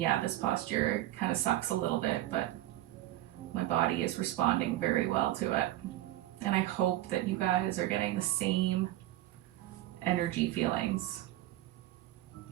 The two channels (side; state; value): left; quieter; 15.0 dB